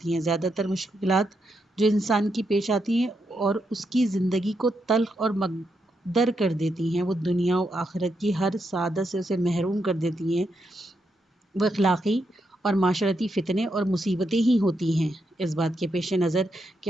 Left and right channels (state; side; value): normal; both; correlation 0.82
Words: ہیں۔ زیادہ تر مشکلات جو انسان کی پیش آتی ہیں اور اس کی زندگی کو تلخ اور مکدر کر دیتی ہیں، وہ دنیا و آخرت کی ہر سعادت سے اسے محروم کر دیتی ہیں، وہ اخلاقی اور معاشرتی فتنے اور مصیبتیں ہی ہوتی ہیں۔ اس بات کے پیش نظر